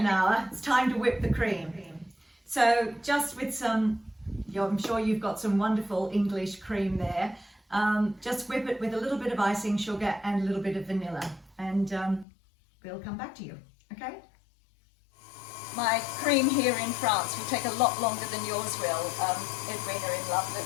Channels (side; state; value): right; drops out; at 12.2 s